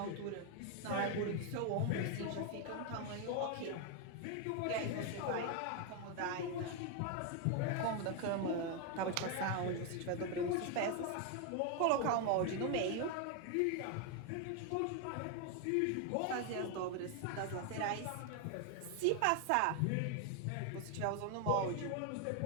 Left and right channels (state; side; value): different; both; correlation 0.01